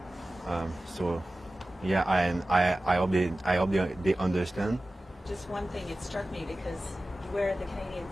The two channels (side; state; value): both; normal; correlation 0.95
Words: So Yeah, and I hope they understand. Just one thing, it struck me because you wear the Canadian